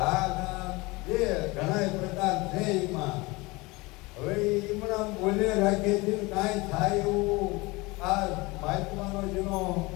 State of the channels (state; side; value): quieter; right; 23.6 dB